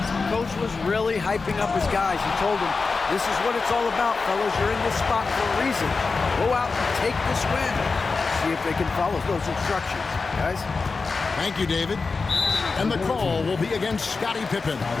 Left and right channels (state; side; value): quieter; right; 4.3 dB